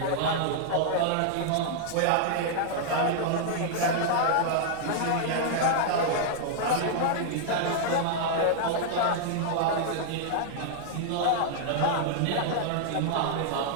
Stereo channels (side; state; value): both; different; correlation -0.01